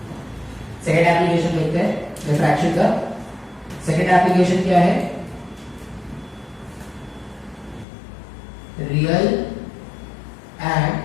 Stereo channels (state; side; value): drops out; right; at 7.9 s